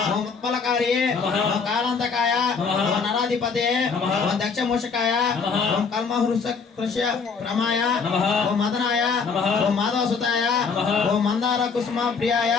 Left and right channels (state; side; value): quieter; right; 5.3 dB